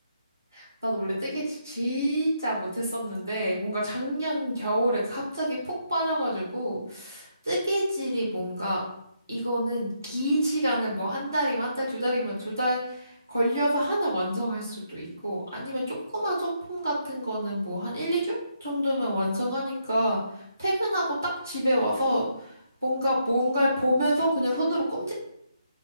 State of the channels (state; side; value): inverted; both; correlation -0.77